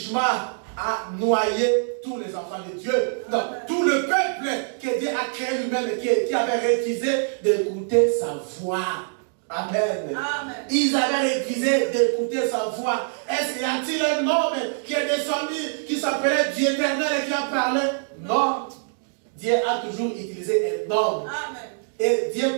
a noyé tous les enfants de Dieu. Non, tout le peuple que Dieu a créé lui-même et qui avait refusé d'écouter sa voix. Amen. Amen. Ils avaient refusé d'écouter sa voix. Est-ce qu'il y a-t-il un homme qui est descendu, qui s'appelait Dieu éternel et qui a parlé? Non. Dieu a toujours utilisé un homme. Amen. Et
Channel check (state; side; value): silent; left; digital silence